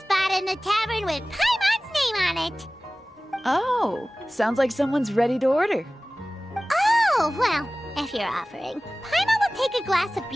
in the tavern with Paimon's name on it. Oh, sounds like someone's ready to order. Oh, well, if you're offering, Paimon will take a glass of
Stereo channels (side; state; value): both; normal; correlation 0.98